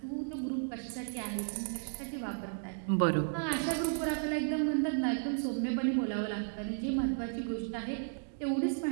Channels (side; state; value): left; silent; digital silence